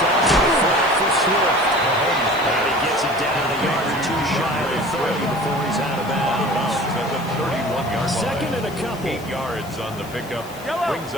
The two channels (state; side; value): noise; left; hiss, 20 dB below the sound